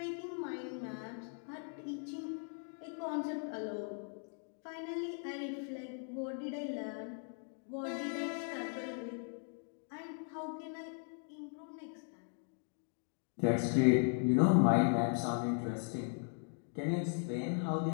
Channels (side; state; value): right; silent; 52 dB below the other